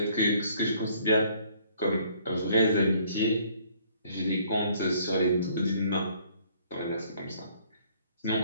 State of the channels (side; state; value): both; inverted; correlation -0.61